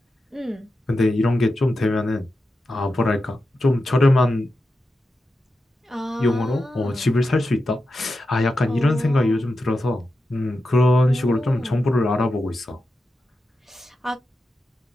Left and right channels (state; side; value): normal; both; correlation 0.90